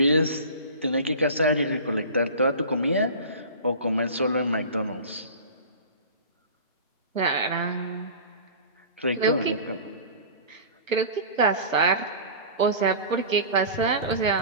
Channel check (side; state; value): both; inverted; correlation -0.36